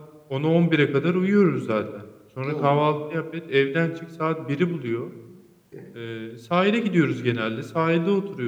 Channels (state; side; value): identical; both; correlation 1.00